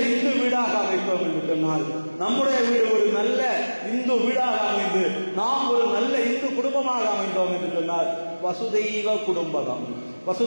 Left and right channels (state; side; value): inverted; both; correlation -1.00